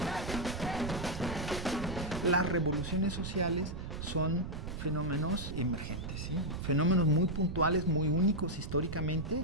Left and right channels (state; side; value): noise; right; rumble, 7 dB below the sound